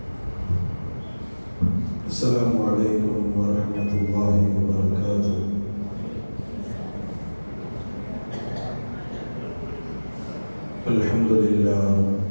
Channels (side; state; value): both; inverted; correlation -1.00